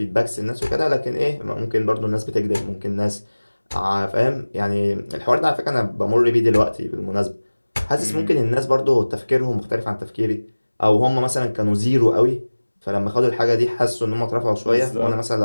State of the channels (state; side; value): inverted; both; correlation -1.00